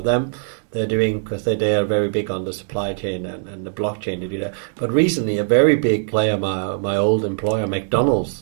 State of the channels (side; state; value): left; silent; 65 dB below the other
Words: them, they're doing, because they are very big on the supply chain and the blockchain to do that. But recently, a very big player, my old employer,